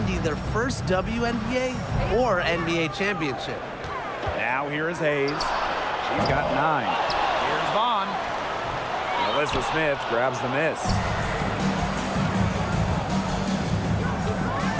their first WNBA or NBA championship. Now here is Hayes. She's got 9. Here's Vaughn. Nalissa Smith grabs the miss.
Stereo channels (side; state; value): both; identical; correlation 1.00